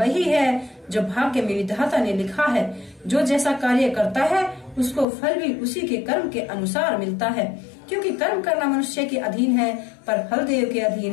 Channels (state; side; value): drops out; right; at 5.1 s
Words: है जो भाग्य में विधाता ने लिखा है। जो जैसा कार्य करता है उसको फल भी उसी के कर्म के अनुसार मिलता है, क्योंकि कर्म करना मनुष्य के अधीन है पर फल देव के